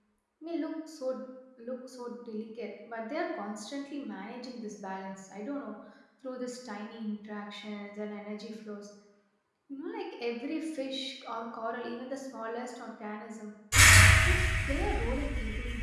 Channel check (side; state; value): both; identical; correlation 1.00